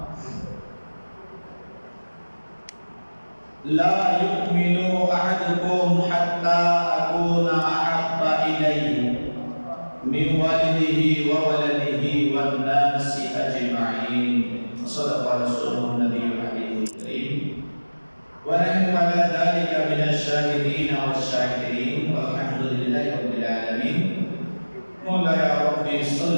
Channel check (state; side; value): inverted; both; correlation -1.00